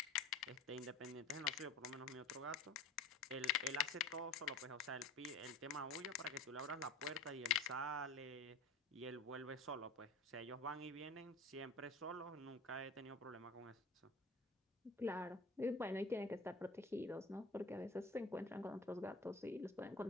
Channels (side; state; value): right; quieter; 3.1 dB